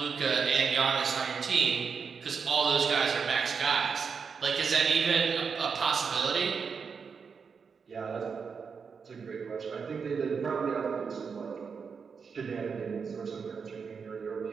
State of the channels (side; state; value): left; quieter; 5.8 dB